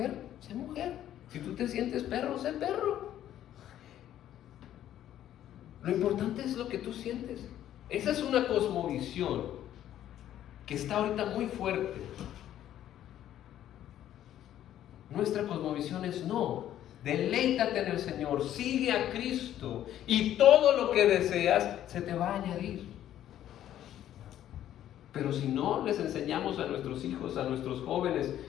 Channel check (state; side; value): quieter; right; 11.7 dB